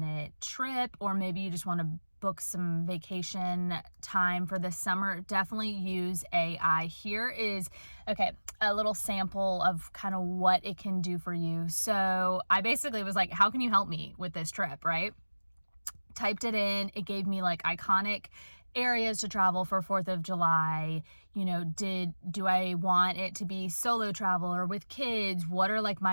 trip, or maybe you just want to book some vacation time for this summer, definitely use AI. Here is, a little sample of kind of what it can do for you. So I basically was like, how can you help me with this trip, right? Typed it in. It gave me like iconic areas to travel for 4th of July. Do I want it to be solo travel or with kids? What are like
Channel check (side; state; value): both; inverted; correlation -1.00